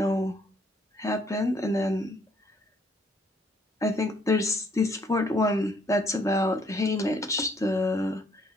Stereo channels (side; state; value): both; normal; correlation 0.66